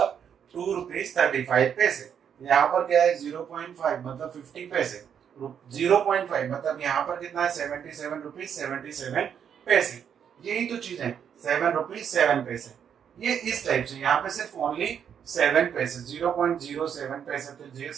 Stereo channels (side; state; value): left; quieter; 8.1 dB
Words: 2 रुपीज 35 पैसे। यहाँ पर क्या है 0.5 मतलब 50 पैसे, 0.5 मतलब यहाँ पर कितना है 77 रुपीज 77 पैसे। यही तो चीज है, 7 रुपीज 7 पैसे। ये इस टाइप से, यहाँ पे सिर्फ ओनली 7 पैसे, 0.07 पैसे, तो